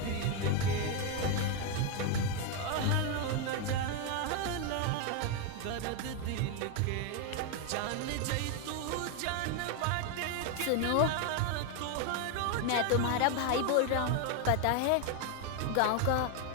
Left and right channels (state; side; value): different; both; correlation 0.01